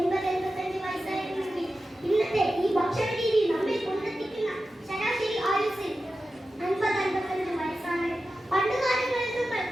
വയസ്സായിരുന്നെങ്കിൽ ഇന്നത്തെ ഈ ഭക്ഷണ രീതി നമ്മെ കൊണ്ടെത്തിക്കുന്ന ശരാശരി ആയുസ് 50-55 വയസ്സാണ്. പണ്ടുകാലങ്ങളിൽ നമ്മൾ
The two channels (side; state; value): both; normal; correlation 0.93